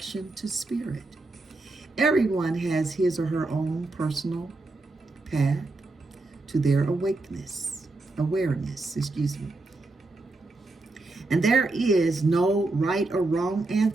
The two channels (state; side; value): quieter; left; 3.1 dB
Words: to spirit. Everyone has his or her own personal path to their awareness. And there is no right or wrong